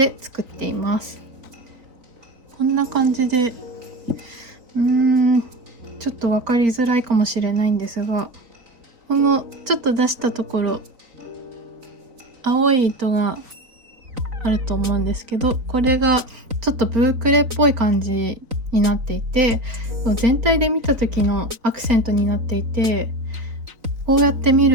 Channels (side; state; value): left; late; 3.9 ms